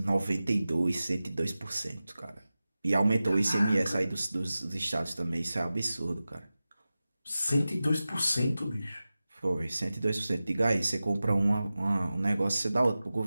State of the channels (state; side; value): inverted; both; correlation -0.95